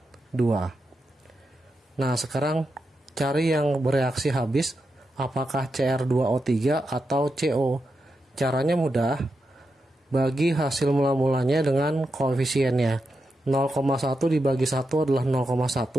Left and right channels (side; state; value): both; normal; correlation 0.87